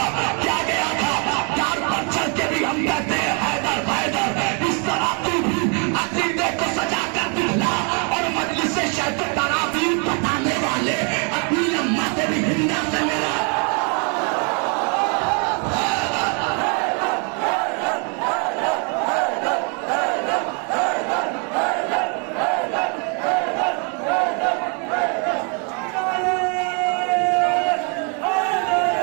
क्या गया था, कार पर चढ़ के भी हम कहते हैं हैदर हैदर। इस तरह तू भी अकीदे को सजा कर दिखला, और मजलिस से शैख तरावी बताने वाले अपनी अम्मा से भी हिंदा से मिला।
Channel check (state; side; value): quieter; left; 36.9 dB